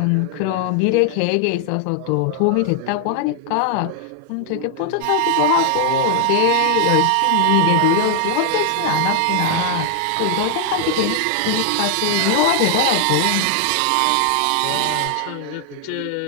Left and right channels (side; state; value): both; different; correlation 0.00